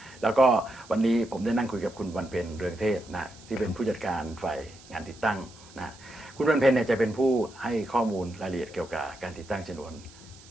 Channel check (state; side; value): noise; right; hiss, 22 dB below the sound